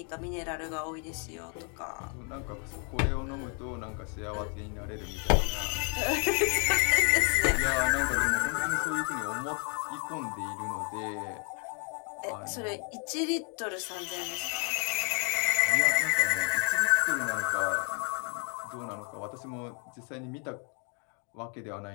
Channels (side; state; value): right; quieter; 38.7 dB